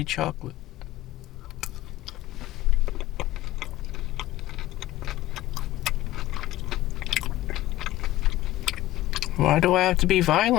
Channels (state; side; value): quieter; right; 16.1 dB